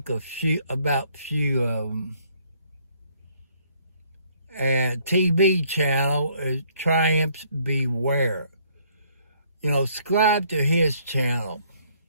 about few of them. And TB channel is Triumphs Beware. You know, subscribe to his channel.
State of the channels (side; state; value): both; inverted; correlation -0.64